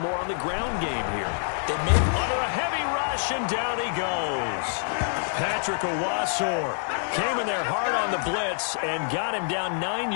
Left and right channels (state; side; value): silent; right; 61 dB below the other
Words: on the ground game here? They may under a heavy rush, and down he goes. Patrick Owasor came in there hard on the blitz and got him down 9